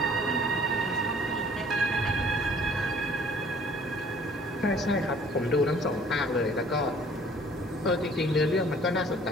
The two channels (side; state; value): both; normal; correlation 0.55